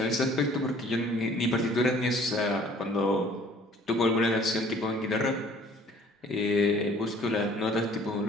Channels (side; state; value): both; normal; correlation 0.54